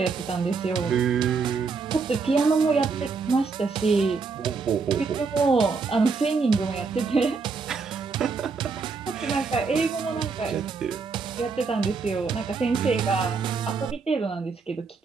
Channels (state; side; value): quieter; left; 4.8 dB